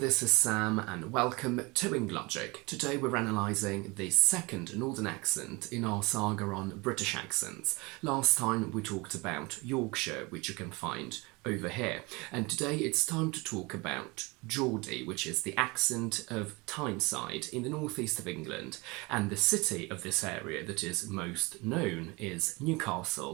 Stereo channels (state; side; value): quieter; left; 25.8 dB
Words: is Sam and welcome to Logic. Today we're analysing the second Northern accent in our saga on British accents. Last time we talked about Yorkshire, which you can find over here, and today it's time to talk about Geordie, which is the accent of Tyneside in the northeast of England, and the city of this area that is most known is